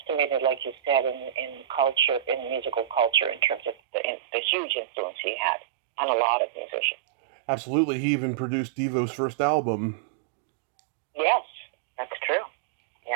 like you said, in culture, in musical culture, in terms of the huge influence he had on a lot of musicians. Absolutely. He even produced Devo's first album. Yes, that's true.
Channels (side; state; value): left; drops out; at 3.8 s